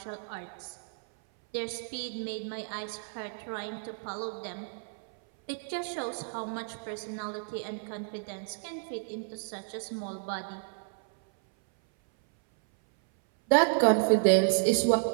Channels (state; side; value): silent; left; 57 dB below the other